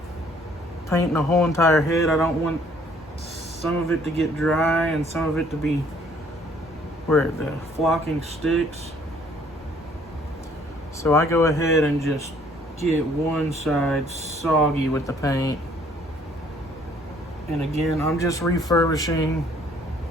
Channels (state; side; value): normal; both; correlation 0.60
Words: painting the whole entire head. I don't want some of it to get dry and some of it to be where the flocking sticks. So I go ahead and just get one side soggy with the paint. And again, I'm just refurbishing